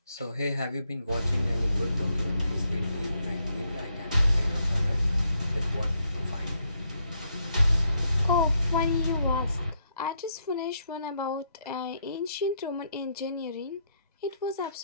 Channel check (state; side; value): inverted; both; correlation -0.76